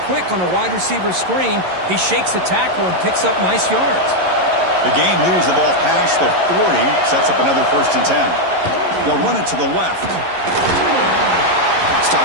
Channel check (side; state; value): left; late; 11 ms